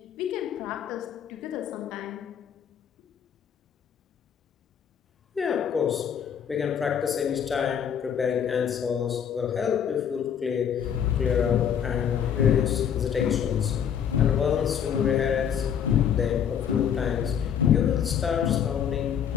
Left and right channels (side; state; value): right; quieter; 8.4 dB